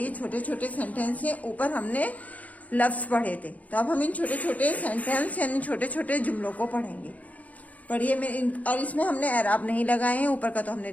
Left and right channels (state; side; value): late; right; 0.073 ms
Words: छोटे छोटे सेंटेंस हैं। ऊपर हमने लफ्ज पढ़े थे, तो अब हम इन छोटे छोटे सेंटेंस यानी छोटे छोटे जुमलों को पढ़ेंगे। पढ़िए और इसमें हमने एराब नहीं लगाए हैं, ऊपर का तो हमने